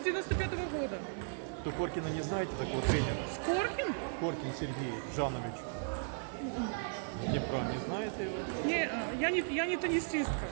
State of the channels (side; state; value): left; silent; 54 dB below the other